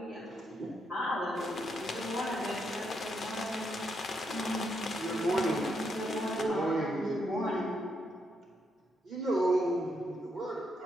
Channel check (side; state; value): both; normal; correlation 0.78